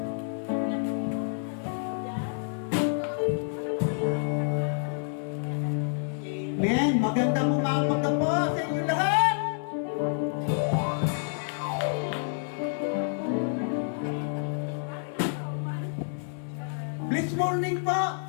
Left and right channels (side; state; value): right; silent; digital silence